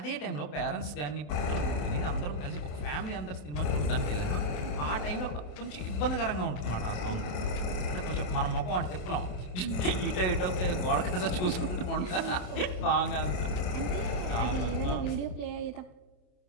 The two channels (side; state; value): right; late; 27 ms